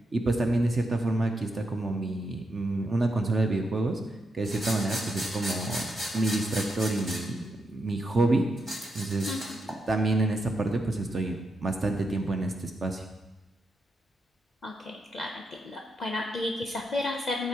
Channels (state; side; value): normal; both; correlation 0.83